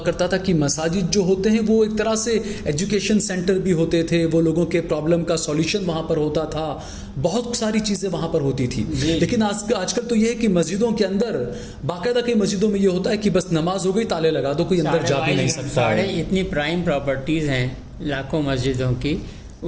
تھا کہ مساجد جو ہوتے ہیں وہ ایک طرح سے ایجوکیشن سینٹر بھی ہوتے تھے، وہ لوگوں کے پرابلم کا سولیوشن وہاں پر ہوتا تھا، بہت ساری چیزیں وہاں پر ہوتی تھی. لیکن آج کل تو یہ ہے کہ مسجدوں کے اندر باقاعدہ کئی مسجدوں میں یہ ہوتا ہے کہ بس نماز ہو گئی، تالے لگا دو، کوئی اندر جا بھی نہیں سکتا ہے. اتنی پرائم پراپرٹیز ہیں لاکھوں مسجدوں کی،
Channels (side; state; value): both; identical; correlation 1.00